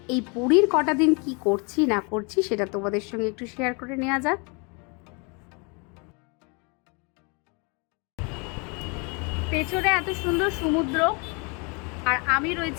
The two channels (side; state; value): right; quieter; 32.5 dB